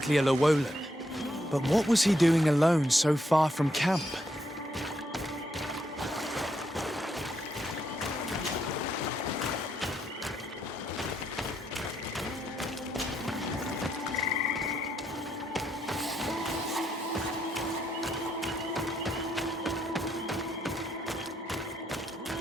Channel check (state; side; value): normal; both; correlation 0.77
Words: a Llewellyn. But what was he doing alone so far from camp?